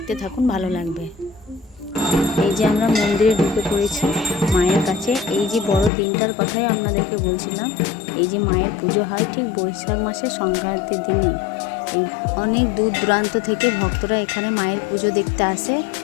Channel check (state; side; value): drops out; right; at 5.9 s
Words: থাকুন, ভালো লাগবে। এই যে আমরা মন্দিরে ঢুকে পড়েছি মায়ের কাছে। এই যে বড় দিনটার কথাই আপনাদেরকে বলছিলাম। এই যে মায়ের পুজো হয় ঠিক বৈশাখ মাসের সংক্রান্তির দিনে। এই অনেক দূর দূরান্ত থেকে ভক্তরা এখানে মায়ের পুজো দেখতে আসে